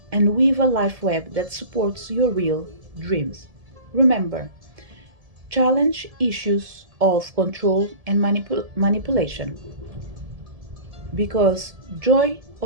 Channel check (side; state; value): left; late; 1.7 ms